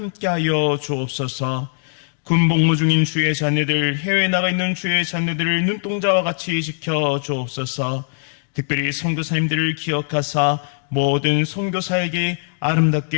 주옵소서. 군복무 중인 주의 자녀들, 해외에 나가 있는 주의 자녀들을 눈동자와 같이 지켜 주옵소서. 특별히 선교사님들을 기억하사 모든 선교사에게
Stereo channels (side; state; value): right; silent; digital silence